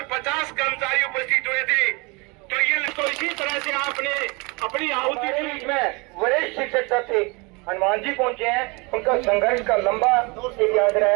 50 कर्मचारी उपस्थित हुए थे। तो इसी तरह से आपने अपनी आहुति दी। में वरिष्ठ शिक्षक थे हनुमान जी पहुंचे हैं, उनका संघर्ष का लंबा एक यात्रा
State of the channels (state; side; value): quieter; left; 27.9 dB